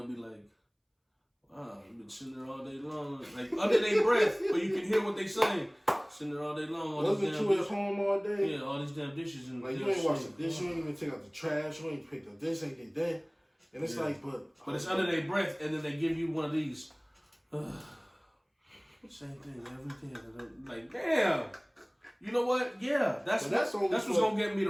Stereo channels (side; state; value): both; identical; correlation 1.00